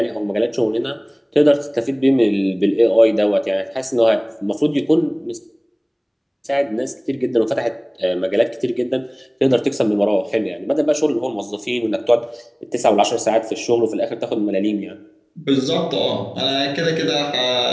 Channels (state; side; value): identical; both; correlation 1.00